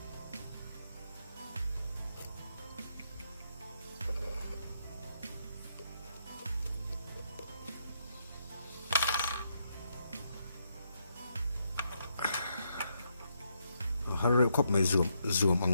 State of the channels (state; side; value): inverted; both; correlation -0.78